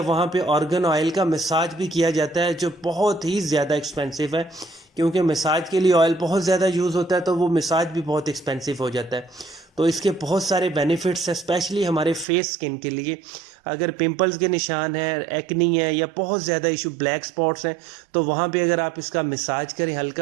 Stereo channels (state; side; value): drops out; left; at 12.2 s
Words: पे ऑर्गन ऑयल का मसाज भी किया जाता है, जो बहुत ही ज़्यादा एक्सपेंसिव है, क्योंकि मसाज के लिए ऑयल बहुत ज़्यादा यूज़ होता है, तो वो मसाज भी बहुत एक्सपेंसिव हो जाता है। तो इसके बहुत सारे बेनिफिट्स हैं, स्पेशली हमारे फेस स्किन के लिए। अगर पिंपल्स के निशान हैं, एक्नी है, या बहुत ज़्यादा इशू ब्लैक स्पॉट्स हैं, तो वहाँ पे अगर आप इसका मसाज करें